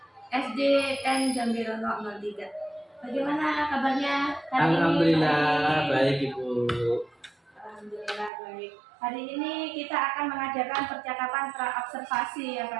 SDN Gambirono 03. Bagaimana kabarnya hari ini? Alhamdulillah baik Ibu. Alhamdulillah baik. Hari ini kita akan mengadakan percakapan pra-observasi ya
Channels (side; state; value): left; drops out; at 8.3 s